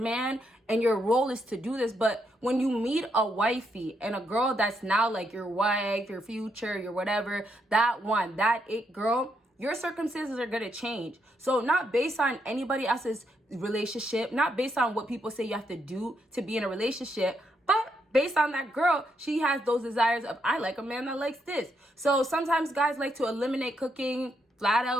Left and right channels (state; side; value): normal; both; correlation 0.78